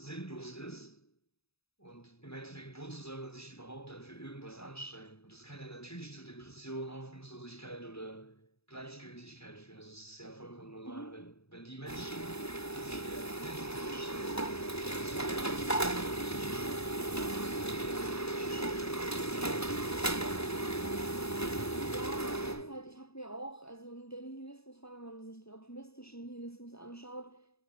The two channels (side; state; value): right; late; 0.78 ms